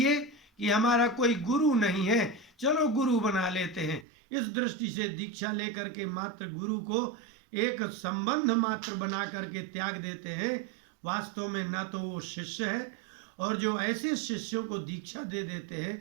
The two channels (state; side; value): drops out; left; at 4.0 s